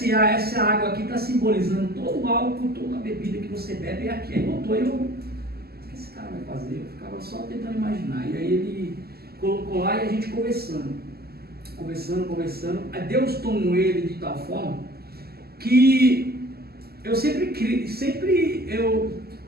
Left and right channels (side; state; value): left; late; 0.46 ms